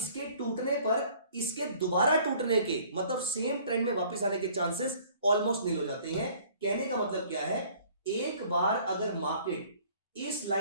टूटने पर इसके दोबारा टूटने के, मतलब सेम ट्रेंड में वापस आने के चांसेस ऑलमोस्ट नील हो जाते हैं। कहने का मतलब क्या है, एक बार अगर मार्केट इस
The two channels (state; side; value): inverted; both; correlation -0.55